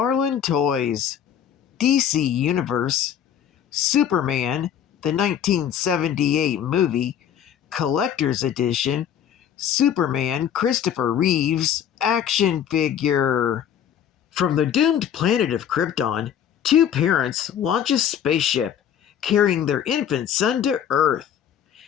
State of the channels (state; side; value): quieter; right; 9.2 dB